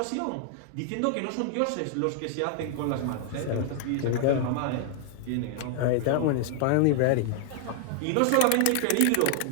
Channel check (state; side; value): different; both; correlation 0.00